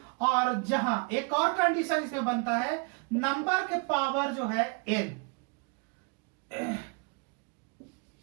और जहां एक और कंडीशन इसमें बनता है, नंबर के पावर जो है n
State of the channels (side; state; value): left; quieter; 33.7 dB